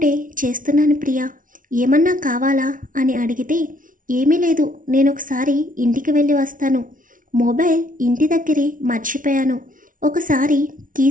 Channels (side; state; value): left; late; 0.38 ms